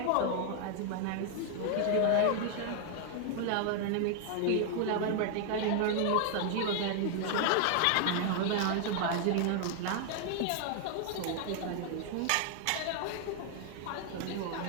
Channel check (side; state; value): both; different; correlation 0.00